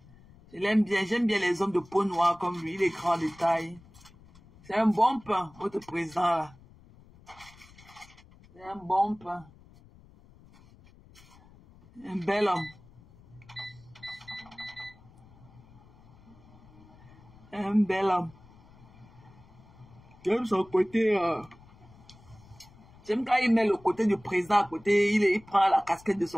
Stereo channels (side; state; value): left; noise; rumble, 24 dB below the sound